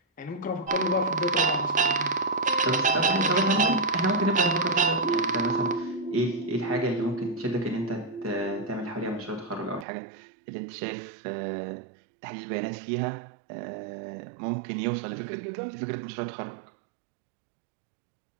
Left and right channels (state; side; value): drops out; left; at 9.9 s